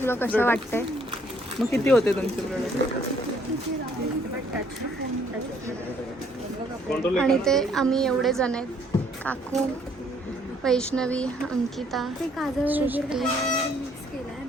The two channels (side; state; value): both; normal; correlation 0.65